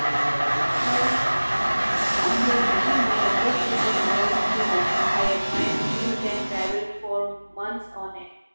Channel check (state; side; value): inverted; both; correlation -1.00